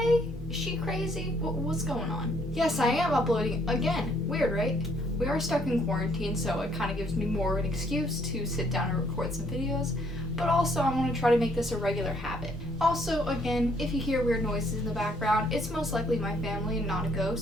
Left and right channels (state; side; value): normal; both; correlation 0.66